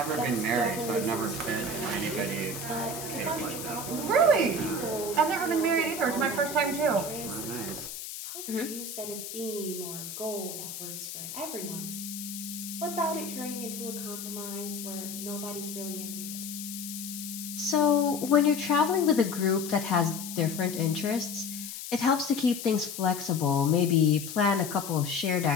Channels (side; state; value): left; noise; hiss, 9 dB below the sound